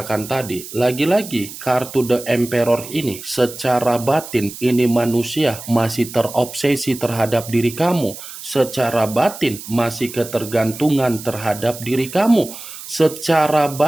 tadi, lagi-lagi kartu The Emperor ini secara batin ini manusia masih terobsesi terhadap diri kamu. Secara batin masih ketergantungan terhadap diri kamu. Secara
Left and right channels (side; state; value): right; noise; hiss, 13 dB below the sound